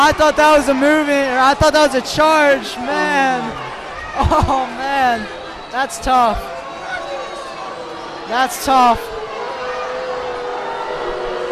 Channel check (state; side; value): identical; both; correlation 1.00